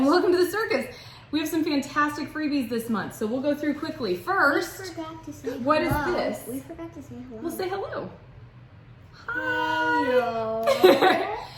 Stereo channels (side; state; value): both; identical; correlation 1.00